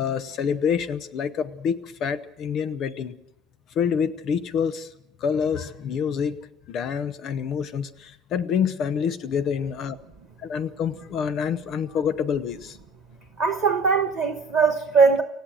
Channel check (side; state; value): both; normal; correlation 0.51